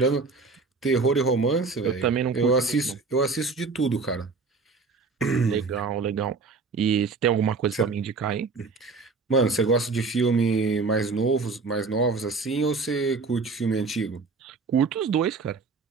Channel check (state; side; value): quieter; left; 4.3 dB